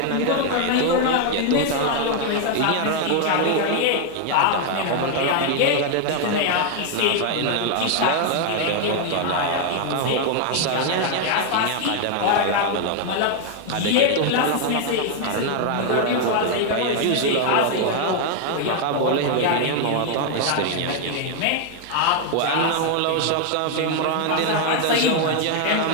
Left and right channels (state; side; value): different; both; correlation 0.00